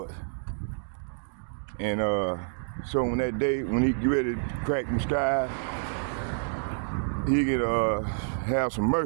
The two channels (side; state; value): left; silent; digital silence